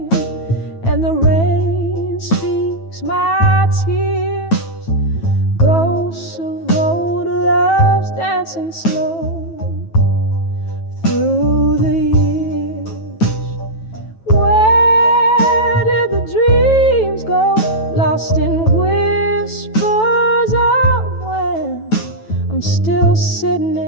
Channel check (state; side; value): late; right; 9.1 ms